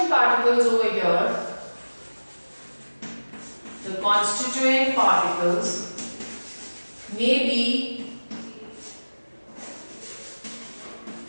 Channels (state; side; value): inverted; both; correlation -1.00